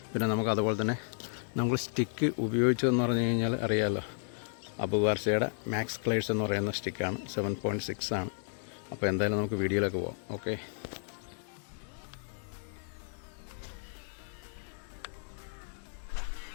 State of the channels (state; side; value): silent; right; digital silence